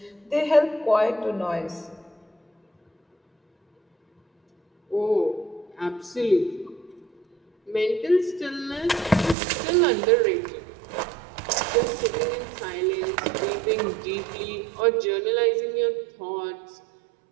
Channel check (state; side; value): drops out; left; at 9.3 s